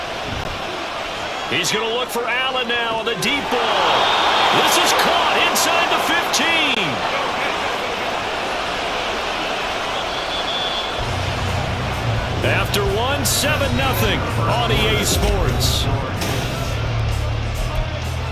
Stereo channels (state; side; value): identical; both; correlation 1.00